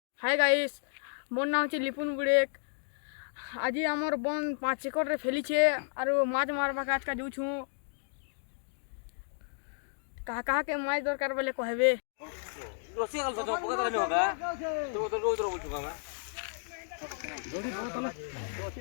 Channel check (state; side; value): silent; right; digital silence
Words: Hi guys मोर नाम है लिपुन बुड़ेक। आज आमर बन 5 एकड़ फैलीछे और माछ मारवा आज का जूँ कहा कहा के माछ दरकार बोले कहबे